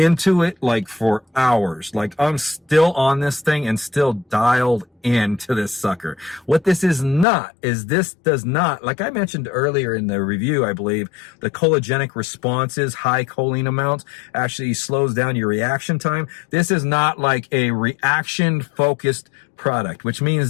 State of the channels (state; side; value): drops out; right; at 7.2 s